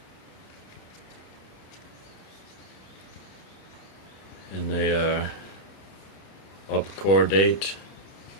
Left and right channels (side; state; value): right; late; 30 ms